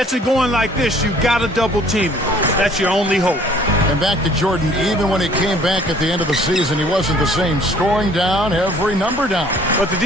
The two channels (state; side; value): normal; both; correlation 0.56